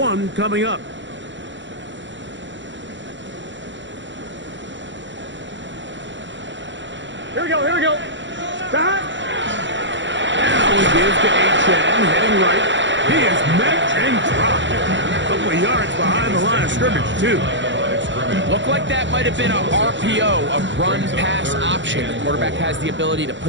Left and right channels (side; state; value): left; late; 0.54 ms